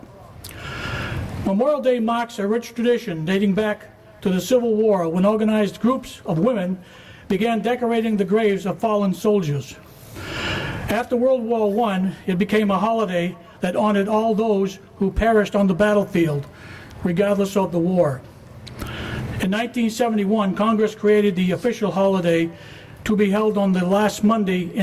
Memorial Day marks a rich tradition dating back to the Civil War, when organized groups of women began decorating the graves of fallen soldiers. After World War I, it became a holiday that honored all those who perished on the battlefield, regardless of the war. In 1971, Congress created the official holiday to be held on the last Monday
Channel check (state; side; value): identical; both; correlation 1.00